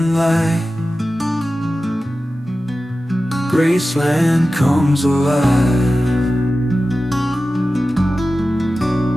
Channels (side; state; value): both; normal; correlation 0.94